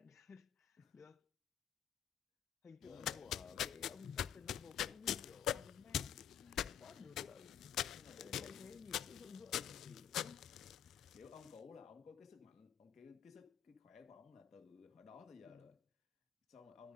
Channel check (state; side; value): quieter; right; 9.4 dB